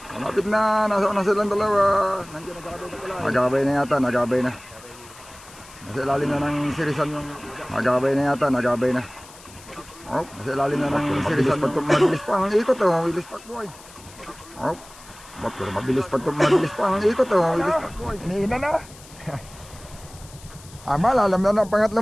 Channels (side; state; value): left; noise; hiss, 21 dB below the sound